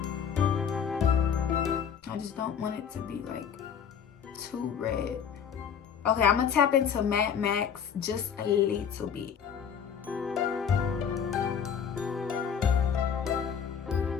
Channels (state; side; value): quieter; right; 7.6 dB